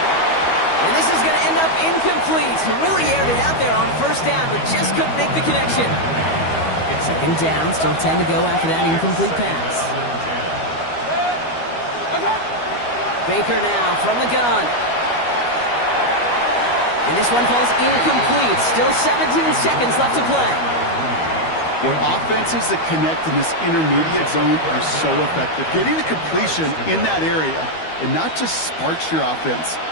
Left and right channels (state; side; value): late; right; 12 ms